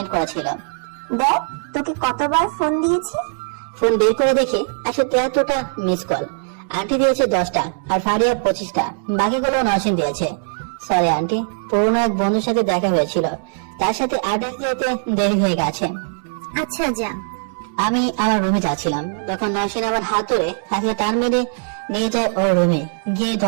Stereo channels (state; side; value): silent; left; 66 dB below the other